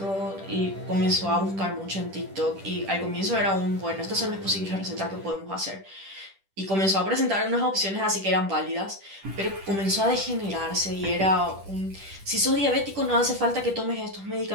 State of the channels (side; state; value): left; late; 10 ms